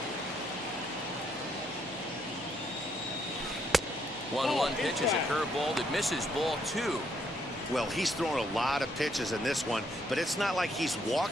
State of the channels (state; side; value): noise; left; hum, 25 dB below the sound